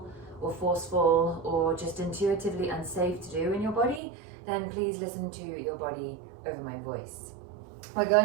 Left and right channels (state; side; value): drops out; left; at 4.0 s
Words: or forceful or just intuitively unsafe to do in your body, then please listen to your body over my voice. We're